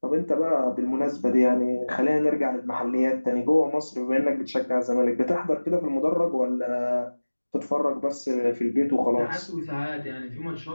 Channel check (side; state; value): both; inverted; correlation -1.00